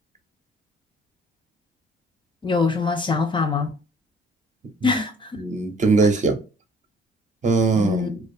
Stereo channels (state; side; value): normal; both; correlation 0.57